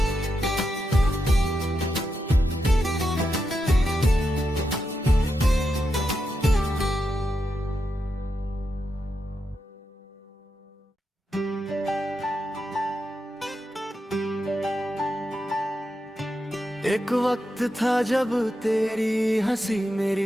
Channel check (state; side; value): normal; both; correlation 0.86